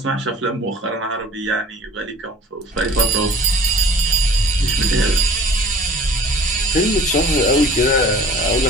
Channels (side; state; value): both; normal; correlation 0.48